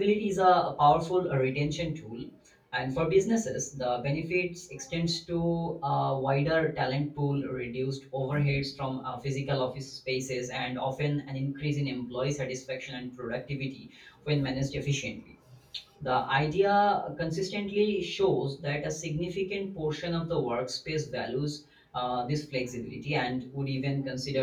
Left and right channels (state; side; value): identical; both; correlation 1.00